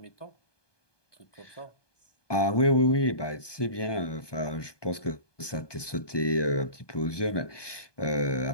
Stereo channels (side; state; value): right; late; 1.2 ms